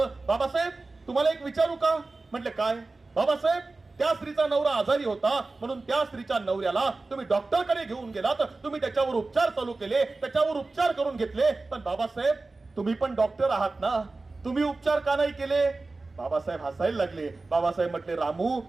बाबासाहेब तुम्हाला एक विचारू का? म्हटले काय? बाबासाहेब त्या स्त्रीचा नवरा आजारी होता म्हणून त्या स्त्रीच्या नवऱ्याला तुम्ही डॉक्टरकडे घेऊन गेलात, तुम्ही त्याच्यावर उपचार चालू केले, त्याच्यावर उपचार करून घेतले. पण बाबासाहेब तुम्ही पण डॉक्टर आहात ना, तुम्ही उपचार का नाही केले? बाबासाहेब हसायला लागले. बाबासाहेब म्हटले, रामू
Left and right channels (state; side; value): quieter; left; 3.5 dB